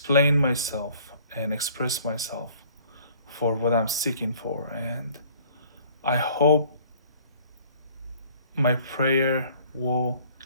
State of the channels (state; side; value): inverted; both; correlation -0.54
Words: myself and express myself for what I'm seeking for. And I hope my prayer will